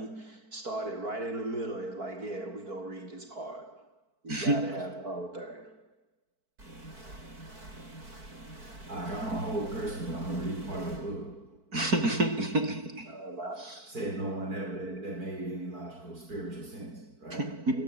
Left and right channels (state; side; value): late; left; 4.5 ms